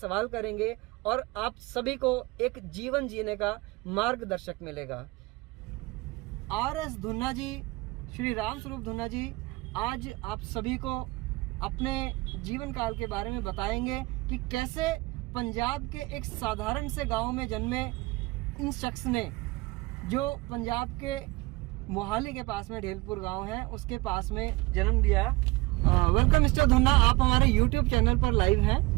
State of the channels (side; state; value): left; quieter; 22.2 dB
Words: करेंगे और आप सभी को एक जीवन जीने का मार्गदर्शक मिलेगा। RS धुन्ना जी, श्री राम स्वरूप धुन्ना जी आज आप सभी को अपने जीवन काल के बारे में बताएंगे कि कैसे पंजाब के एक साधारण से गांव में जन्मे इन शख्स ने, जो पंजाब के मोहाली के पास में ढेलपुर गांव है, उसके पास में जन्म लिया। वेलकम मिस्टर धुन्ना, आप हमारे YouTube चैनल पर लाइव हैं,